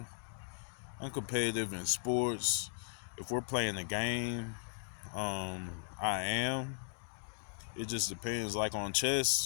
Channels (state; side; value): silent; right; digital silence